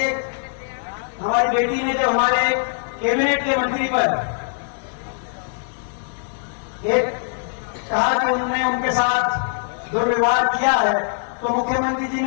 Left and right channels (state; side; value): silent; right; digital silence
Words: एक हमारी बेटी ने जो हमारे कैबिनेट के मंत्री पर एक कहा कि उन्होंने उनके साथ दुर्व्यवहार किया है, तो मुख्यमंत्री जी